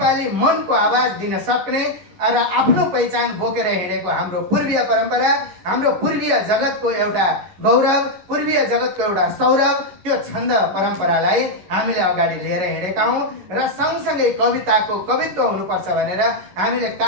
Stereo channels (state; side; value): late; left; 11 ms